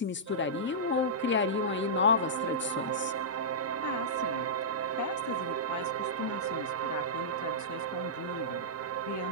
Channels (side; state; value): both; normal; correlation -0.15